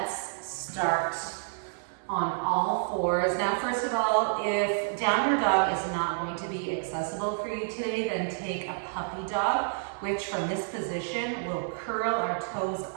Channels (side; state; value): left; silent; 58 dB below the other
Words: start on all fours. Now, first of all, if downward dog is not going to be accessible for you today, then take a puppy dog, which from this position will curl our toes